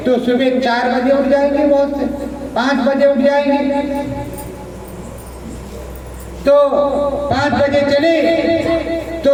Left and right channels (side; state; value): both; identical; correlation 1.00